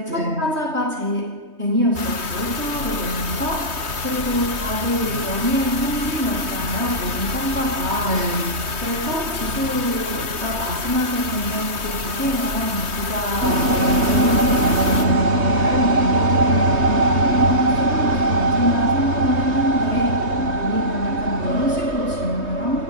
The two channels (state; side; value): late; left; 3.2 ms